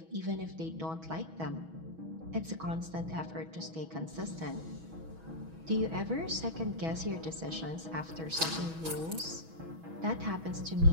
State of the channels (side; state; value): left; late; 6.2 ms